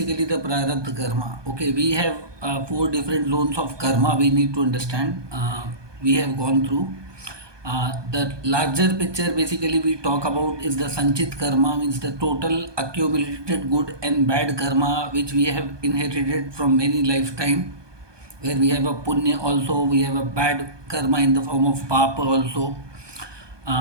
the Prarabdha Karma? Okay, we have four different zones of karma we need to understand. We have gone through. The larger picture basically we talk about is the Sanchit karma, means the total accumulated good and bad karma which we have inherited from many lifetime, where we have a punya also, we have a bad karma in the form of papa also,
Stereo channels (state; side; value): late; left; 1.2 ms